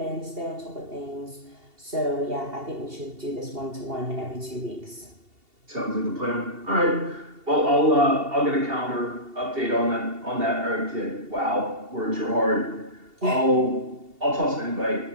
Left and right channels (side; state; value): left; late; 2.7 ms